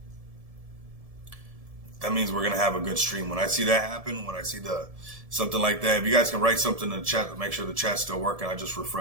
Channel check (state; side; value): late; left; 1.7 ms